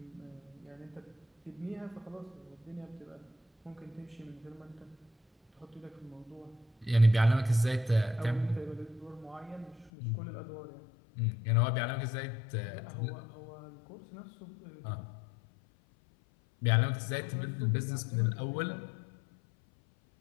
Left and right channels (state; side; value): drops out; right; at 9.9 s